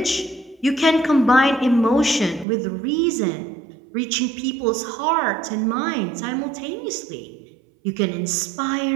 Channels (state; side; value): drops out; left; at 2.5 s